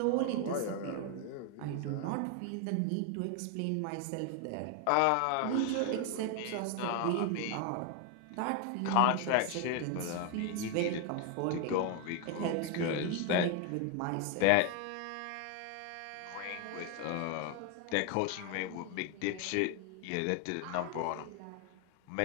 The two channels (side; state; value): both; different; correlation 0.01